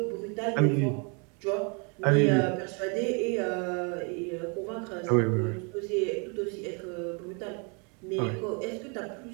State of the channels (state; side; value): quieter; left; 34.7 dB